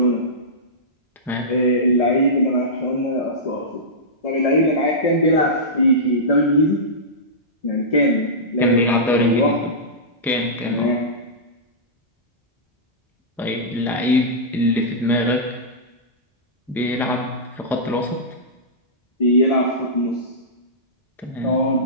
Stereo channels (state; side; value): normal; both; correlation -0.16